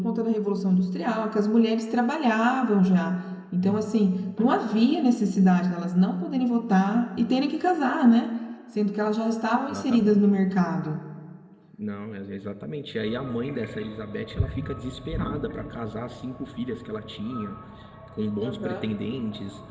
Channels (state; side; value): identical; both; correlation 1.00